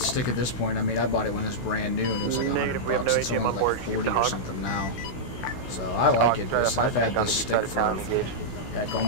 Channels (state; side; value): late; right; 16 ms